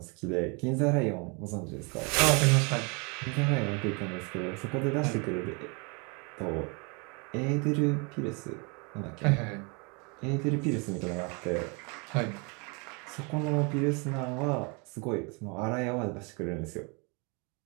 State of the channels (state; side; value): quieter; left; 32.1 dB